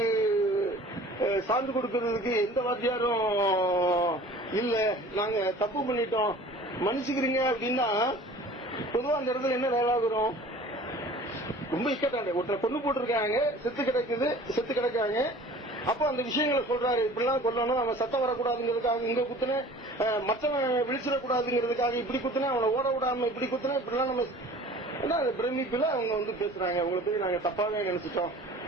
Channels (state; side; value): normal; both; correlation 0.45